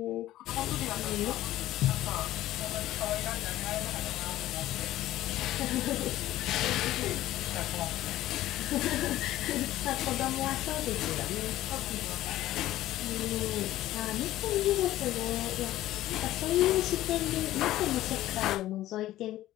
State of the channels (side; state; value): right; quieter; 14.7 dB